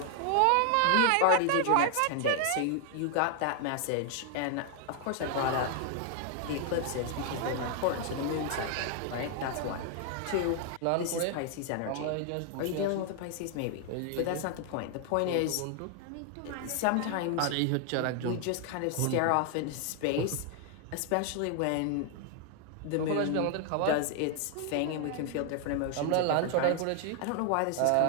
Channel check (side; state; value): both; different; correlation 0.00